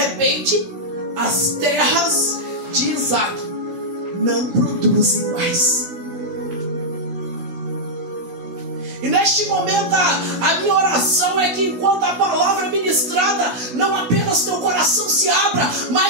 as terras de Isaque não produzem mais. E neste momento a minha oração é que enquanto a palavra é ministrada, não apenas teu coração se abra,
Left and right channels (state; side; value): late; left; 16 ms